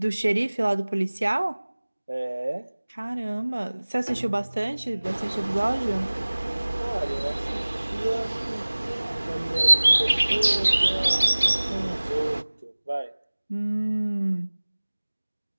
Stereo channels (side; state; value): both; inverted; correlation -1.00